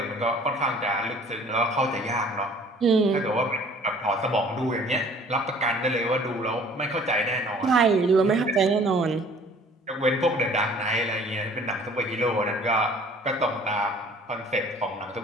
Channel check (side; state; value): both; normal; correlation 0.52